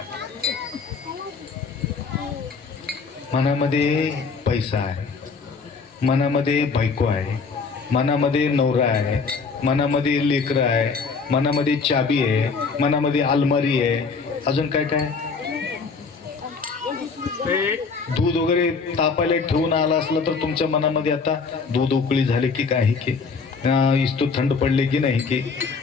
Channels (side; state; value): right; quieter; 4.9 dB